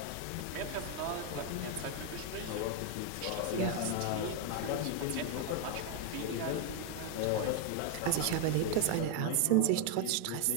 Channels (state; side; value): different; both; correlation 0.01